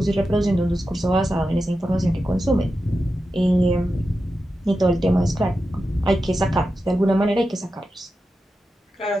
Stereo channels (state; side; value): normal; both; correlation 0.91